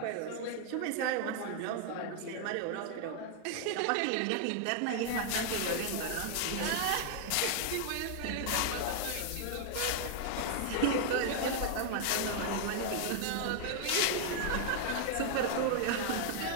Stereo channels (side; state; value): both; different; correlation 0.00